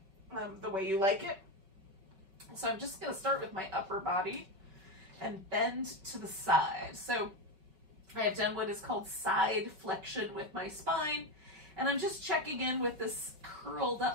the way you like it. So I'm just going to start with my upper body and bend to the side. So I have done what is called side flexion with my spine, and I'm just checking in with this curled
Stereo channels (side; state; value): left; late; 5.3 ms